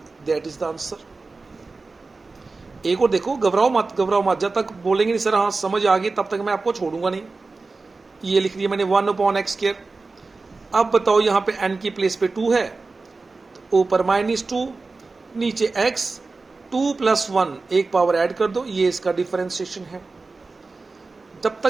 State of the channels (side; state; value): left; quieter; 3.8 dB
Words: That is the answer. एक और देखो, घबराओ मत, जब तक बोलेंगे नहीं सर हाँ समझ आ गई तब तक मैं आपको छोड़ूंगा नहीं। ये लिख दिया मैंने 1/x²। अब बताओ यहाँ पे n की प्लेस पे 2 है, तो ऊपर -2, नीचे x, 2 + 1 एक पावर ऐड कर दो, ये इसका डिफरेंशिएशन है। जब